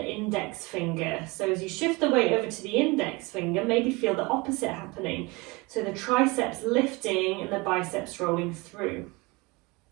index finger. So as you shift the weight over to the index finger, maybe feel the opposite happening. So the triceps lifting and the biceps rolling through.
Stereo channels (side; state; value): left; quieter; 25.2 dB